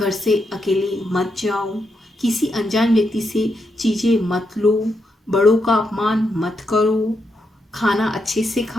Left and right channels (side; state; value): both; normal; correlation 0.82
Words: से अकेले मत जाओ, किसी अनजान व्यक्ति से चीज़ें मत लो, बड़ों का अपमान मत करो, खाना अच्छे से